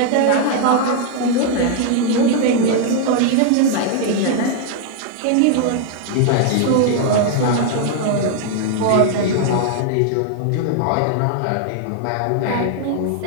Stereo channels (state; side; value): different; both; correlation 0.00